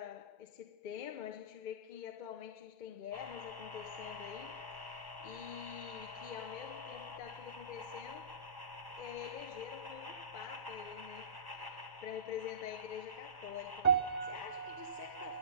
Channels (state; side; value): late; right; 1.1 ms